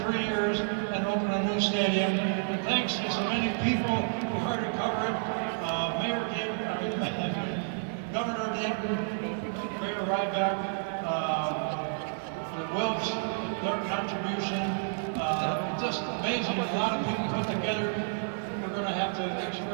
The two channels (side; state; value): left; silent; digital silence